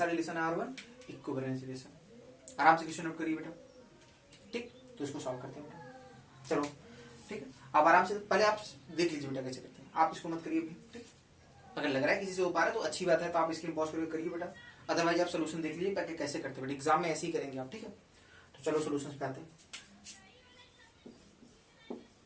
रिलेशन है R1, इक्विवेलेंस रिलेशन। आराम से क्वेश्चन नोट करिए बेटा, ठीक, तो इसको सॉल्व करते हैं बेटा। चलो ठीक है, अब आराम से पहले आप देख लीजिए बेटा कैसे करते हैं, आप इसको मत करिए अभी, ठीक। अगर लग रहा है किसी से हो पा रहा है तो अच्छी बात है, तो आप स्क्रीन पॉज करके करिए बेटा, अदरवाइज आप सोल्यूशन देख लीजिए ताकि कैसे करते हैं बेटा, एग्जाम में ऐसे ही करेंगे आप, ठीक है। तो चलो सोल्यूशन पे आते हैं,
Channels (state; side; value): identical; both; correlation 1.00